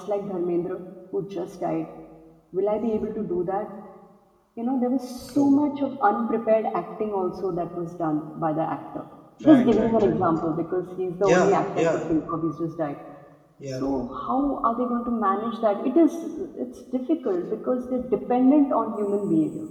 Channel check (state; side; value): identical; both; correlation 1.00